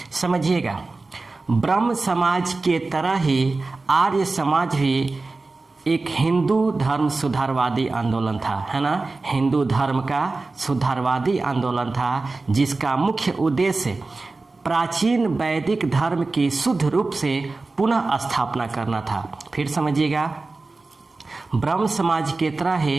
समझिएगा, ब्रह्म समाज के तरह ही आर्य समाज भी एक हिंदू धर्म सुधारवादी आंदोलन था, है ना। हिंदू धर्म का सुधारवादी आंदोलन था, जिसका मुख्य उद्देश्य प्राचीन वैदिक धर्म की शुद्ध रूप से पुनः स्थापना करना था। फिर समझिएगा, ब्रह्म समाज के तरह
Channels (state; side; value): quieter; left; 3.5 dB